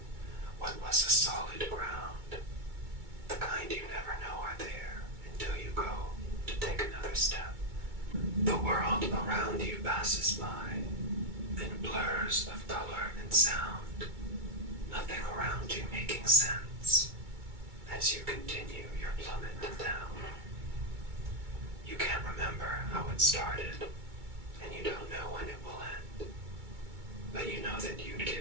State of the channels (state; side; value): late; left; 2.2 ms